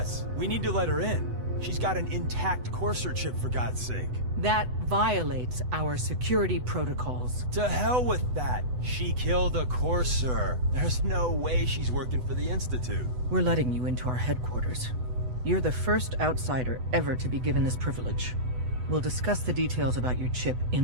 we need to let her in. She's got an intact Courser chip, for God's sake. That violates our security protocols. To hell with that. She killed a Courser. There's no way she's working for the Institute. We're letting you into our headquarters. You're the first outsider ever to be given this privilege. We'll discuss the details about your chip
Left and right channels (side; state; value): left; late; 8.0 ms